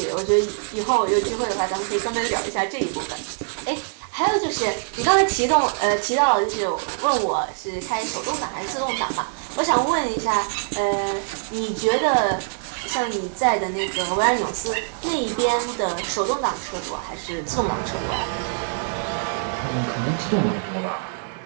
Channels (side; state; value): left; silent; digital silence